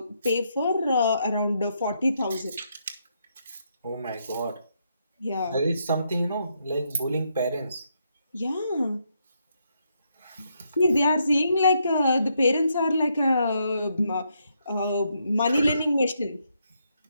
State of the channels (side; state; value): both; inverted; correlation -0.78